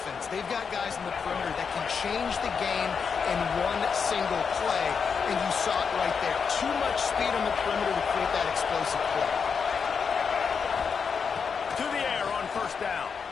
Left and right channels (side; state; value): right; quieter; 6.0 dB